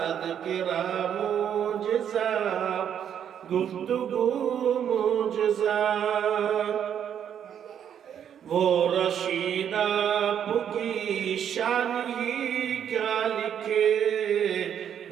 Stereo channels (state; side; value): quieter; left; 9.0 dB